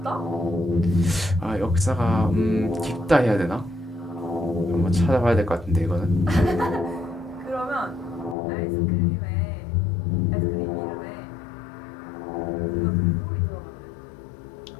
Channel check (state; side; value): drops out; right; at 8.3 s